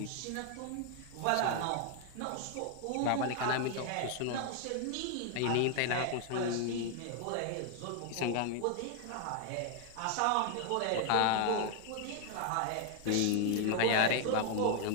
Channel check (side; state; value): both; different; correlation 0.00